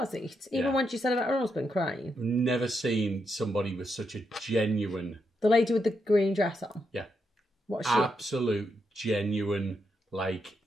it? Even Yeah. when she said about her husband crying. Never seen somebody with such a genuine, The lady with the green dress on. yeah, What's she? absolute genuine, like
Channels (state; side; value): normal; both; correlation 0.82